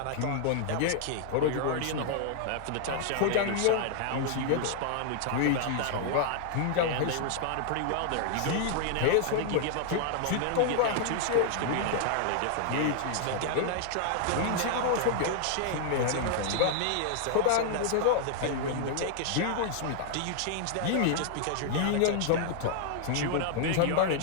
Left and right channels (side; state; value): both; different; correlation -0.01